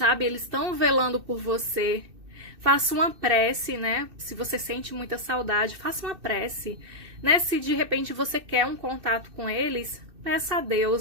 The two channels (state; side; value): late; left; 2.6 ms